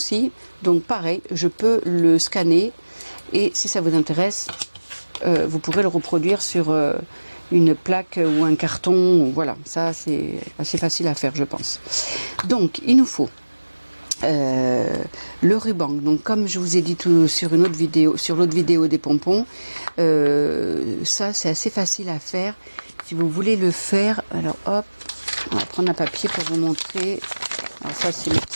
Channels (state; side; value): inverted; both; correlation -1.00